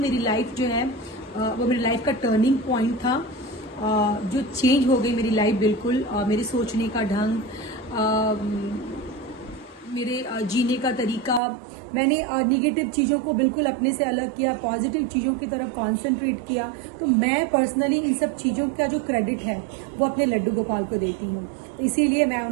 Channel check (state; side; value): drops out; left; at 11.4 s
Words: लाइफ जो है वो मेरी लाइफ का टर्निंग पॉइंट था, जो चेंज हो गई मेरी लाइफ बिल्कुल। मेरे सोचने का ढंग, मेरे जीने का तरीका, मैंने निगेटिव चीज़ों को बिल्कुल अपने से अलग किया, पॉजिटिव चीज़ों की तरफ कॉन्सेंट्रेट किया। तो मैं पर्सनली इन सब चीज़ों का जो क्रेडिट है वो अपने लड्डू गोपाल को देती हूँ, इसीलिए मैं